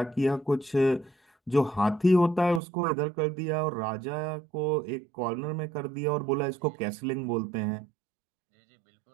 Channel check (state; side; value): drops out; left; at 2.6 s